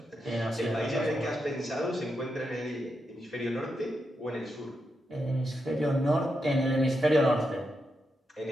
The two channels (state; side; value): normal; both; correlation 0.85